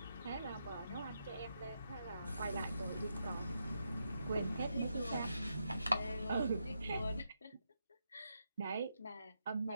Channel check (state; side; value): inverted; both; correlation -0.83